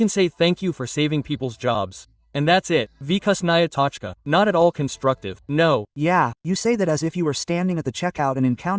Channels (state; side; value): identical; both; correlation 1.00